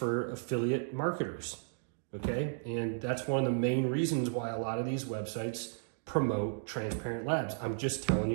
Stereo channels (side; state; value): left; silent; digital silence